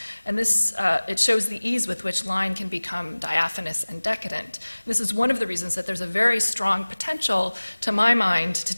And this, it shows the ease with which line can become diaphanous and decadent. This is one of the reasons that there's a very strong potential, to my mind, to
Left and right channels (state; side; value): inverted; both; correlation -1.00